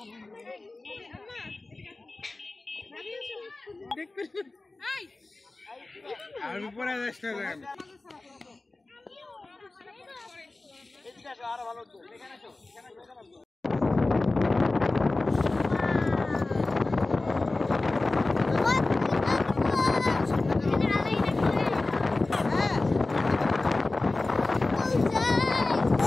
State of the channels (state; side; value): quieter; right; 3.2 dB